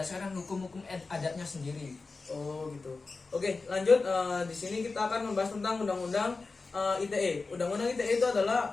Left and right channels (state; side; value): quieter; right; 4.0 dB